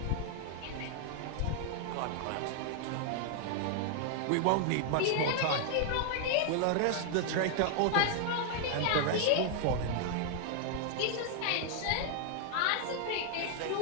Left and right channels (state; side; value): different; both; correlation 0.00